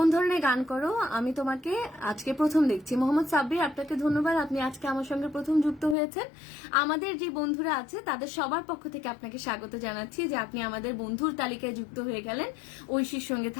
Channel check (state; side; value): drops out; right; at 6.0 s